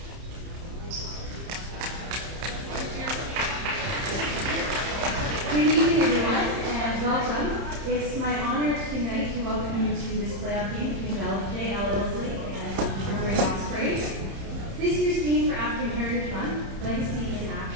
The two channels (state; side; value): late; left; 30 ms